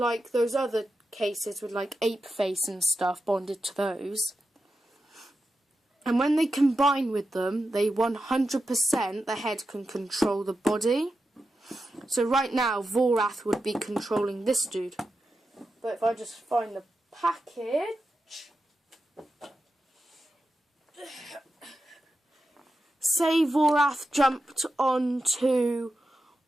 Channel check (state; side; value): normal; both; correlation 0.90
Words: those other cases with like ape face and stuff, bonded to those. And when they combine with them, they 100% the head can control the body. So right now Vorath would be controlling this dude, but if I just find the package, say Vorath jumped onto